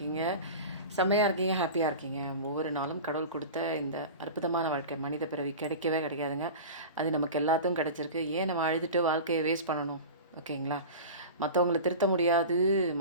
செம்மையாக இருக்கீங்க, ஹாப்பியாக இருக்கீங்க. ஒவ்வொரு நாளும் கடவுள் கொடுத்த இந்த அற்புதமான வாழ்க்கை மனித பிறவி கிடைக்கவே கிடைக்காதுங்க. அது நமக்கு எல்லாத்துக்கும் கிடச்சிருக்கு. ஏன் நம்ம அழுதுட்டு வாழ்க்கையை வேஸ்ட் பண்ணணும்? ஓகேங்களா? மற்றவங்கள திருத்த முடியாது,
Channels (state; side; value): inverted; both; correlation -0.32